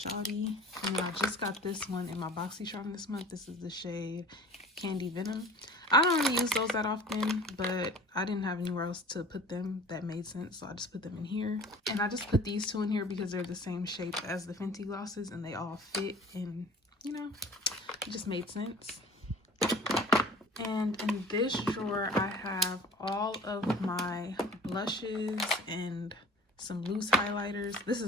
and then I just got this one in my BoxyCharm this month. This is the shade Candy Venom. I don't really use those that often, but I didn't have anywhere else to put them that made sense, so I just put them in here. And I just put these two in here because they're the same shape as the Fenty glosses and they all fit, and you know, it just made sense. And in this drawer, I have all of my blushes and some loose highlighters. This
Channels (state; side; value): normal; both; correlation 0.43